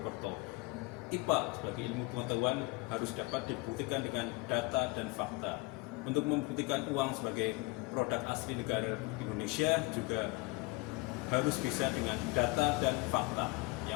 IPA sebagai ilmu pengetahuan harus dapat dibuktikan dengan data dan fakta. Untuk membuktikan uang sebagai produk asli negara Indonesia juga harus bisa dengan data dan fakta.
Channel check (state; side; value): quieter; right; 23.8 dB